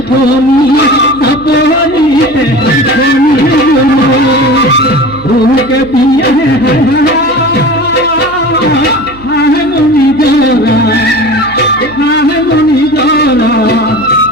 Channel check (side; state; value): right; noise; hum, 20 dB below the sound